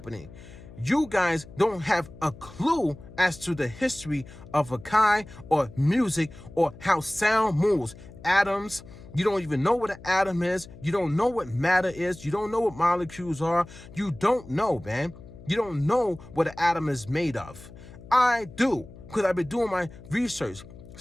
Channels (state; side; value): noise; left; hum, 18 dB below the sound